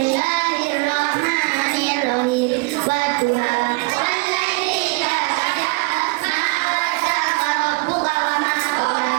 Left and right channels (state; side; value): quieter; left; 28.2 dB